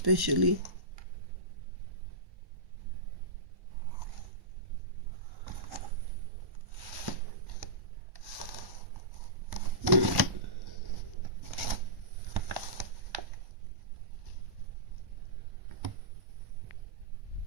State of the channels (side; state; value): left; late; 1.1 ms